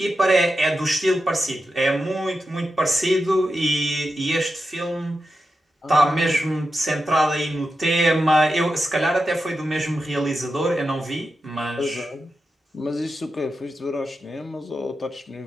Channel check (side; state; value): both; normal; correlation 0.89